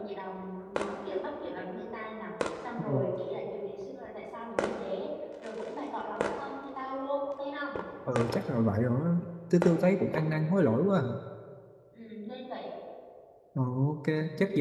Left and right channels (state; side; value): identical; both; correlation 1.00